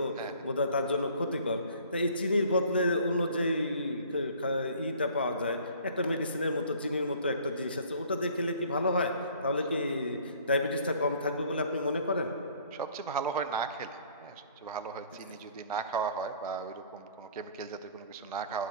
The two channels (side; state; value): both; inverted; correlation -0.54